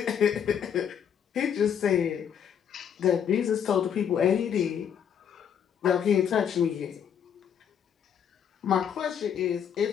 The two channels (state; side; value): quieter; right; 8.3 dB